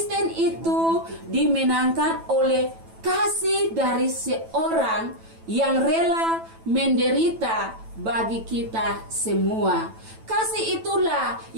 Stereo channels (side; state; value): left; late; 9.1 ms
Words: itu dimenangkan oleh kasih dari seorang yang rela menderita bagi kita semua. Kasih itulah